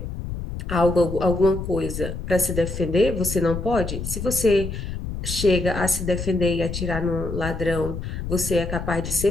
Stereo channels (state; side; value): noise; left; rumble, 6 dB below the sound